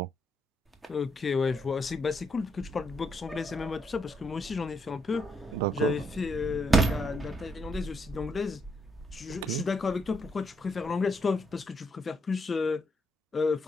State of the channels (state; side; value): normal; both; correlation 0.77